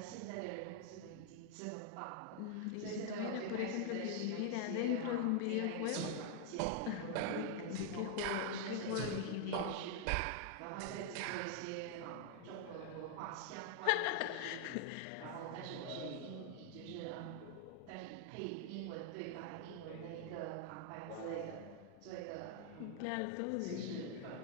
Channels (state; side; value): different; both; correlation 0.00